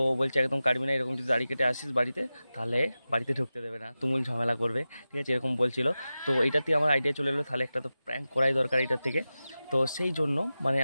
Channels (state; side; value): inverted; both; correlation -0.94